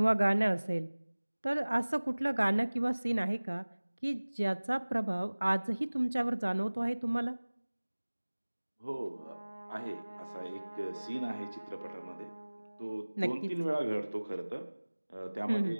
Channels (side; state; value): both; inverted; correlation -1.00